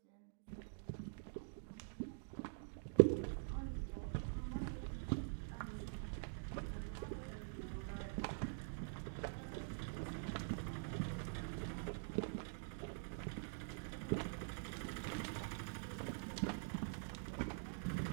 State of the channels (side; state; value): left; silent; digital silence